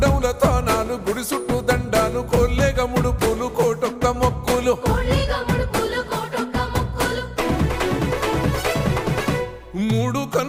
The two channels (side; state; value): both; identical; correlation 1.00